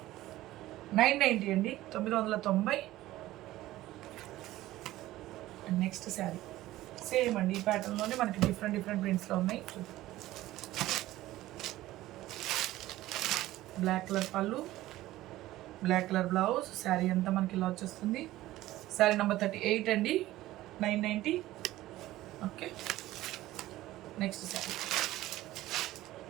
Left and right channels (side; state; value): left; quieter; 16.0 dB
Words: 990 అండి, 990. అండ్ నెక్స్ట్ శారీ సేమ్ అండి, ఈ ప్యాటర్న్లోనే మనకి డిఫరెంట్ డిఫరెంట్ ప్రింట్స్లో ఉన్నాయి. బ్లాక్ కలర్ పళ్ళు, బ్లాక్ కలర్ బ్లౌజ్. శారీ అంతా మనకి ఇలా వచ్చేస్తుంది. శారీ నెంబర్ 38 అండి, 990. Okay, next sari.